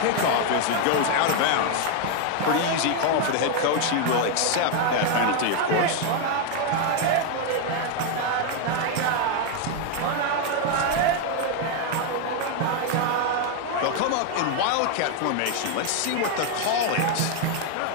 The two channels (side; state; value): both; different; correlation 0.01